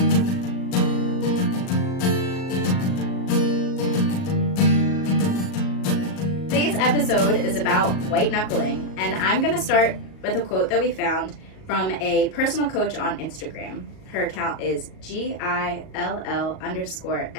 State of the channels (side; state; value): right; late; 38 ms